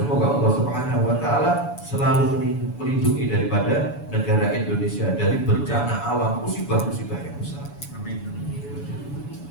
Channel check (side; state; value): right; late; 7.0 ms